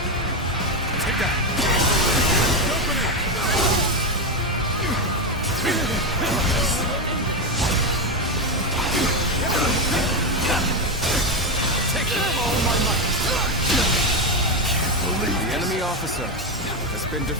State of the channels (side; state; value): both; normal; correlation 0.10